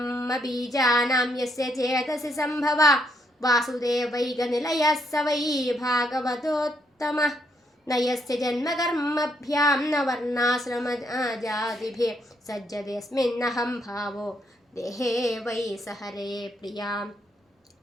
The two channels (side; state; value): both; normal; correlation 0.74